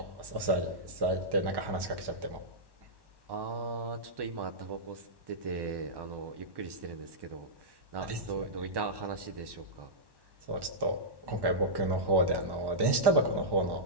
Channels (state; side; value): late; left; 1.1 ms